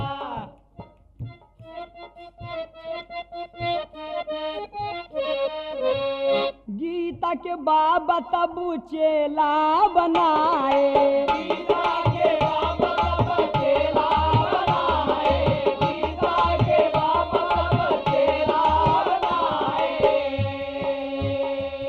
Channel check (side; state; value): both; identical; correlation 1.00